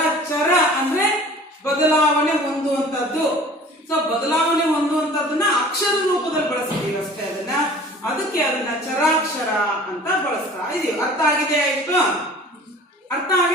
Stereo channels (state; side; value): normal; both; correlation 0.46